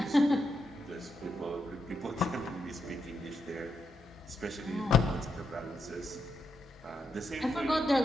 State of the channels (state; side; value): normal; both; correlation 0.82